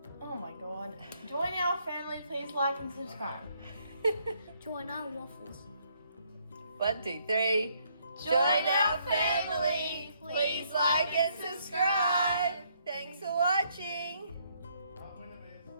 Oh my god. Join our family, please like and subscribe. Join our waffles. 1, 2, 3. Join our family. Please like and subscribe. Thanks for watching.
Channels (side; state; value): both; inverted; correlation -0.70